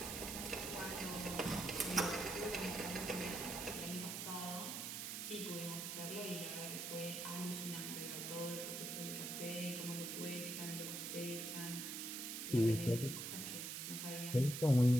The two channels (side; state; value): right; noise; hiss, 4 dB below the sound